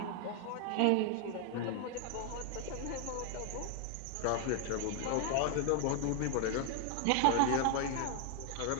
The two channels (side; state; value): both; different; correlation 0.00